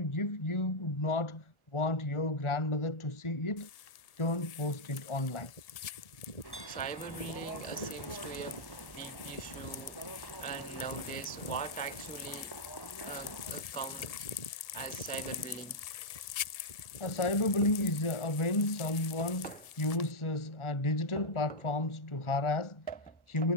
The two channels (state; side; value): late; right; 1.7 ms